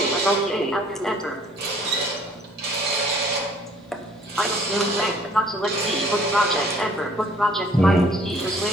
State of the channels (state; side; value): normal; both; correlation 0.57